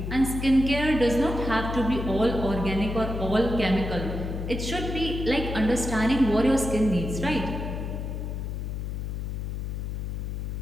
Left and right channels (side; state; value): left; noise; hum, 4 dB below the sound